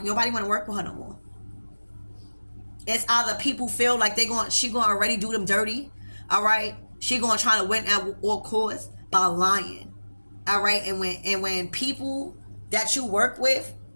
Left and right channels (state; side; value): inverted; both; correlation -1.00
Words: nobody want to work with her no more. It's either people feel like she gonna already do them dirty. All right, she gonna try to win at all costs by lying. All right, and when people that you work with